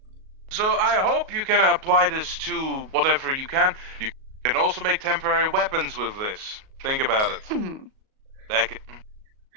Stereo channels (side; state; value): left; late; 38 ms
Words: So I hope you can apply this to whatever you can. You can also make temporary weapons with this. Think about it.